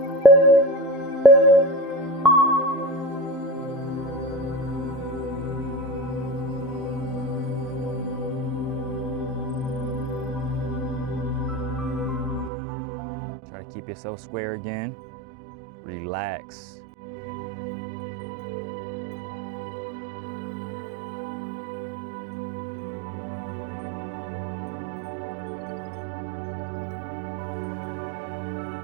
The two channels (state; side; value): drops out; left; at 12.5 s